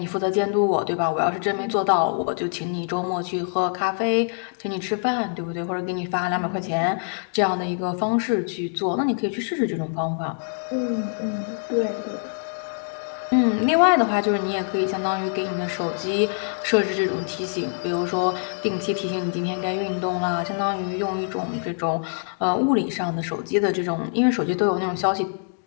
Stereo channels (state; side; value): silent; right; 62 dB below the other